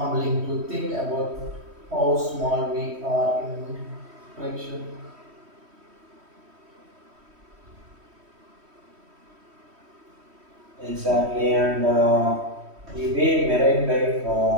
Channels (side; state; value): left; late; 3.1 ms